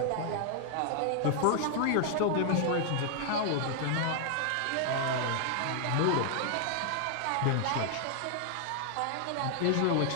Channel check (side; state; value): both; different; correlation 0.00